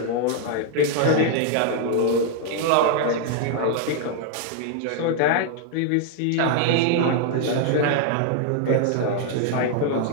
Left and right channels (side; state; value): both; different; correlation 0.00